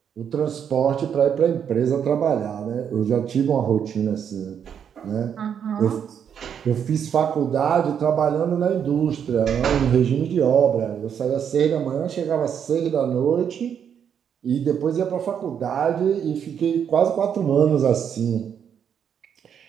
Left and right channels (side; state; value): left; quieter; 8.1 dB